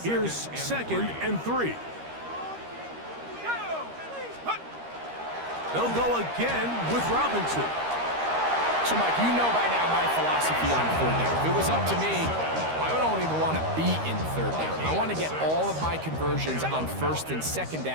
here's second and 3. They'll go again with Robinson. So, Mike, you know by now my philosophy on third down. If it was up to me, I don't even want to be in third down. I want to get all of my conversions on first and second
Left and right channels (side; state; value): left; late; 13 ms